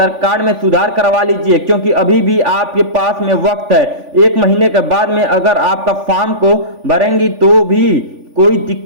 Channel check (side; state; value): left; late; 3.5 ms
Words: कार्ड में सुधार करवा लीजिए, क्योंकि अभी भी आपके पास में वक्त है। 1 महीने के बाद में अगर आपका फॉर्म को भरेंगी तो भी कोई